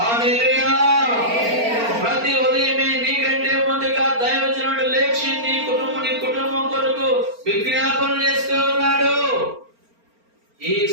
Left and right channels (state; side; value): late; left; 4.4 ms